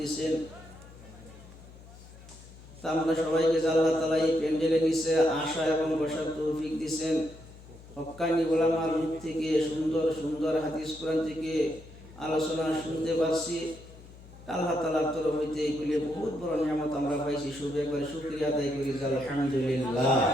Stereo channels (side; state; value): left; noise; hum, 19 dB below the sound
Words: তা আমরা সবাইকে আল্লাহ তাআলা এই প্যান্ডেলে নিচে আসা এবং বসার তৌফিক দিয়েছেন। হক্কানি ওলামার মুখ থেকে সুন্দর সুন্দর হাদিস কোরআন থেকে আলোচনা শুনতে পারছি। আল্লাহ তাআলার তরফ হইতে এগুলি বহুত বড় নিয়ামত আমরা পাইছি। শুকরিয়া আদায় করি আলহামদুলিল্লাহ।